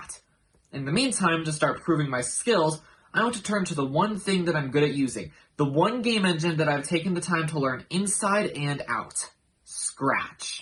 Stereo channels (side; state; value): both; identical; correlation 1.00